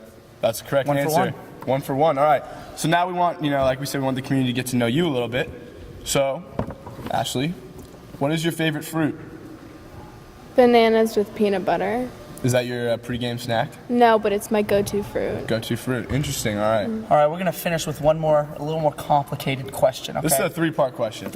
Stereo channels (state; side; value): identical; both; correlation 1.00